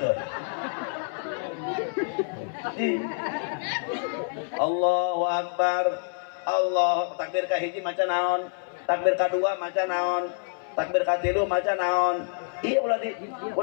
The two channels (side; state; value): right; silent; 60 dB below the other